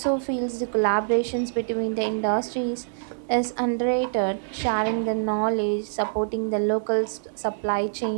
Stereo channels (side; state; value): left; silent; digital silence